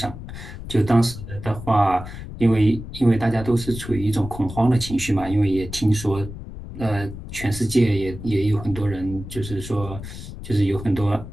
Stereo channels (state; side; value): noise; left; rumble, 11 dB below the sound